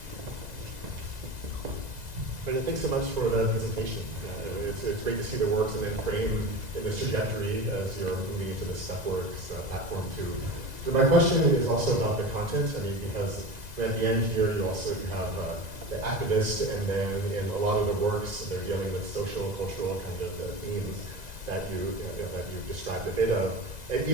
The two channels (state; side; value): late; left; 2.0 ms